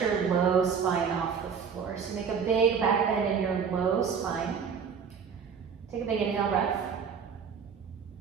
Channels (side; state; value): left; quieter; 6.5 dB